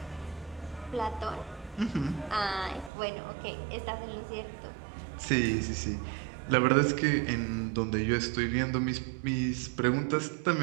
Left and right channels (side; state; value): left; drops out; at 2.9 s